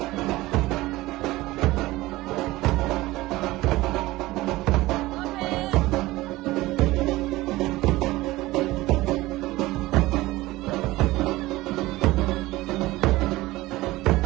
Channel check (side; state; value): left; quieter; 18.6 dB